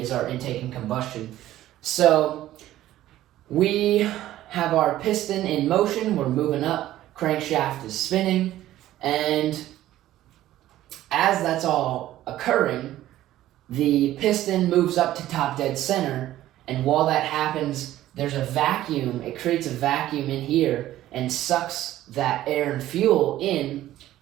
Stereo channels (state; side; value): quieter; left; 14.1 dB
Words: our intake and combustion. So we have our piston in motion, we're moving up, crankshaft is spinning, and as that's all occurring, the piston moves up to top dead center, and while that happens, there's a vacuum. It creates a vacuum in here and sucks that air and fuel in